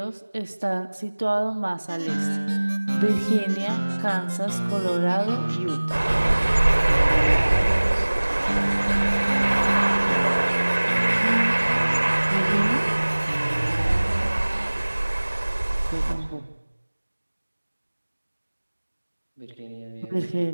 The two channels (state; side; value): inverted; both; correlation -1.00